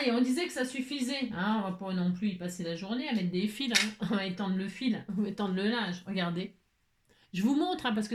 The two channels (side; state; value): both; identical; correlation 1.00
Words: on disait que ça suffisait. Hein, on va pas non plus y passer la journée à mettre des fils. Hein. On va étendre le fil, on va étendre le linge. Regardez. Je vous montre hein, parce